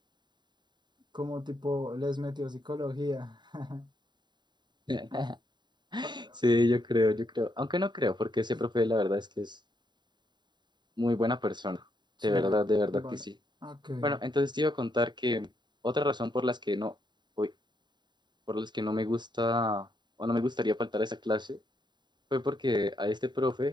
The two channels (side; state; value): left; late; 0.21 ms